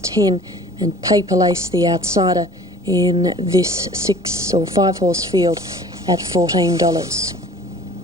and Paper Lace, the outsider, in this 6 or 5 horse field at $14.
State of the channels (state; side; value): normal; both; correlation 0.47